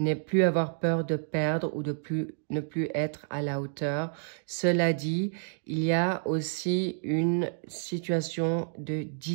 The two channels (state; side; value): silent; left; digital silence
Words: plus avoir peur de perdre ou de ne plus être à la hauteur. Cela dit, il y a aussi une situation de